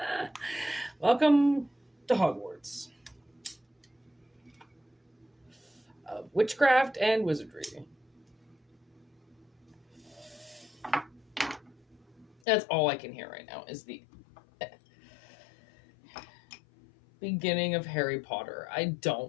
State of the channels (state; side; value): drops out; right; at 12.4 s